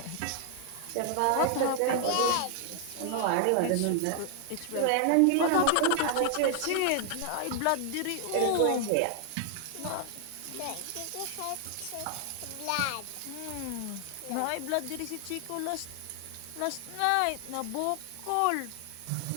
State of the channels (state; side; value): different; both; correlation 0.00